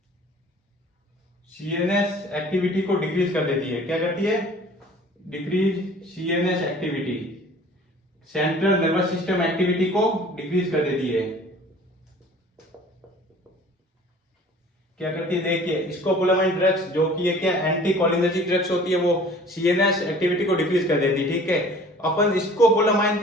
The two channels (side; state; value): both; normal; correlation 0.49